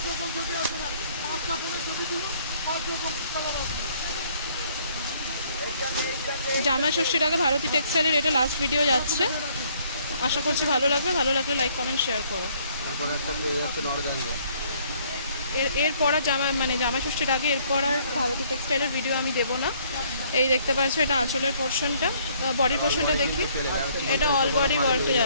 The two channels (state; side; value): inverted; both; correlation -0.63